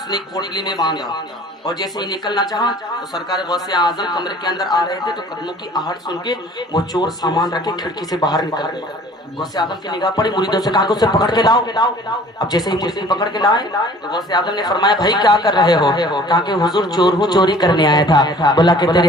نے ایک پوٹلی میں باندھا اور جیسے ہی نکلنا چاہا تو سرکار غوث اعظم کمرے کے اندر آ رہے تھے تو قدموں کی آہٹ سن کے وہ چور سامان رکھے کھڑکی سے باہر نکل گیا. غوث اعظم کی نگاہ پڑی، مریدوں سے کہا کہ اسے پکڑ کے لاؤ. اب جیسے ہی مرید پکڑ کے لائے تو غوث اعظم نے فرمایا بھائی کیا کر رہے ہو؟ کہا کہ حضور چور ہوں، چوری کرنے آیا تھا. بولا کہ تیرے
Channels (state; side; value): normal; both; correlation 0.50